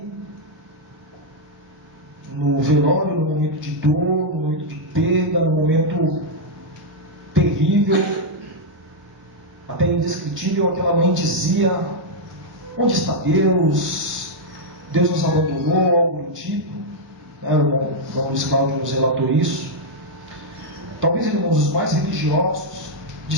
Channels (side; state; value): both; normal; correlation -0.03